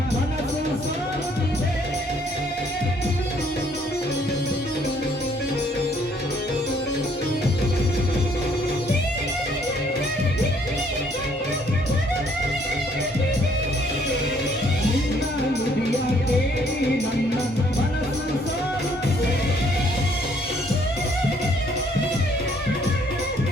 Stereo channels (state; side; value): normal; both; correlation 0.64